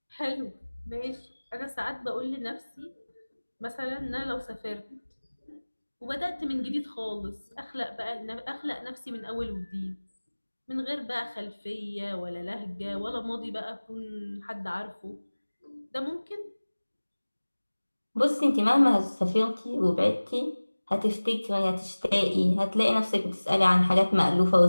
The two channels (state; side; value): inverted; both; correlation -1.00